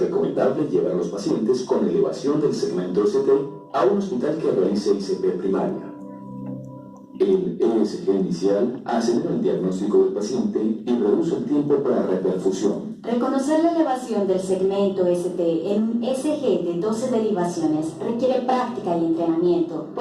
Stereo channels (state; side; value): identical; both; correlation 1.00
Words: llevar a los pacientes con elevación del segmento ST a un hospital que realice ICP primaria. El ESG inicial acelera el diagnóstico del paciente y reduce el tiempo para reperfusión. Reconocer la elevación del segmento ST en un SG de 12 derivaciones requiere práctica y entrenamiento,